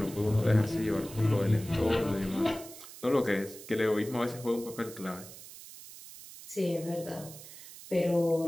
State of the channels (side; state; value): right; noise; hiss, 16 dB below the sound